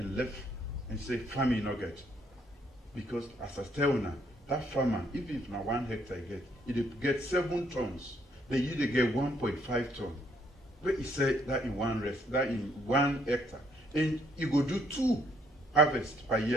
left and say, farming not get. Because as I tell now, that farmer, even if now 1 hectare it get 7 tons, they usually get 1.5 tons. But he said that in one hectare. And you go do 2 harvests per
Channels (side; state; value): both; normal; correlation 0.68